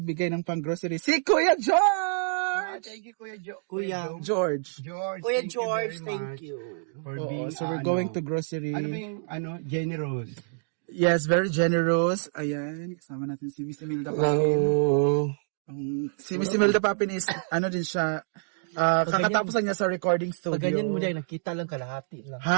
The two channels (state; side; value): silent; left; digital silence